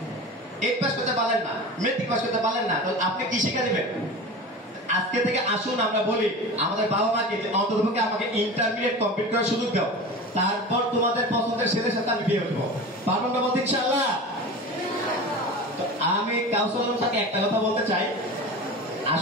8 পাস করতে পারলেন না, মেট্রিক পাস করতে পারলেন না, তো আপনি কি শিক্ষা দিবেন? আজকে থেকে আসুন আমরা বলি আমাদের বাবা মাকে অন্ততপক্ষে আমাকে ইন্টারমিডিয়েট কমপ্লিট করার সুযোগ দাও, তারপর তোমাদের পছন্দের ছেলের সাথে আমি বিয়ে হবো। পারবেন না বলতে ইনশাআল্লাহ? আমি কাউন্সিলর সাথে একটা কথা বলতে চাই,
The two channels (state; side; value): normal; both; correlation 0.31